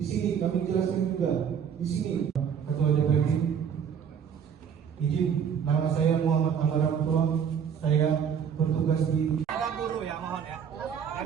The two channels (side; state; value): left; quieter; 7.7 dB